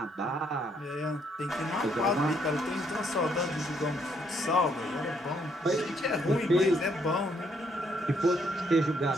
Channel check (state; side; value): normal; both; correlation 0.71